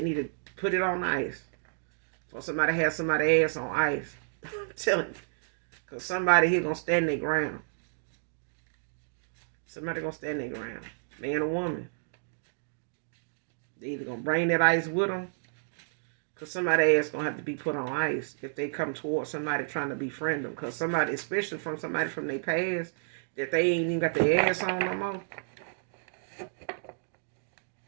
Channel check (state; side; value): silent; left; digital silence